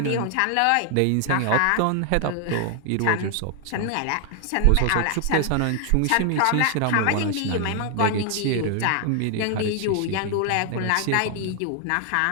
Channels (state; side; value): different; both; correlation 0.00